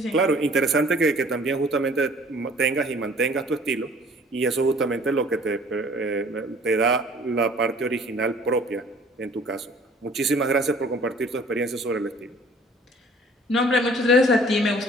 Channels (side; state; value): both; normal; correlation 0.53